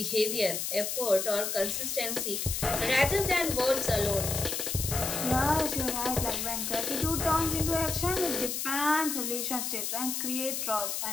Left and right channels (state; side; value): noise; left; hiss, 2 dB below the sound